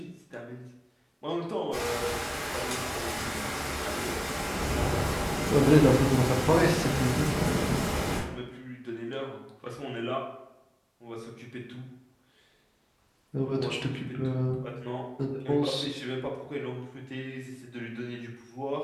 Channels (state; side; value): identical; both; correlation 1.00